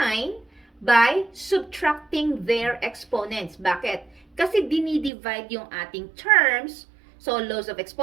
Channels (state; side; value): drops out; left; at 5.1 s